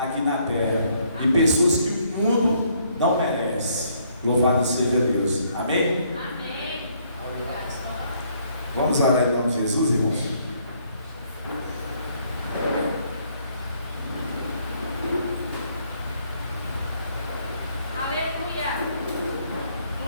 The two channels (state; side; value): inverted; both; correlation -0.68